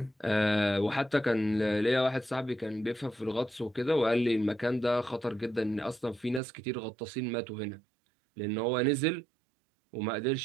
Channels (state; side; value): drops out; left; at 6.4 s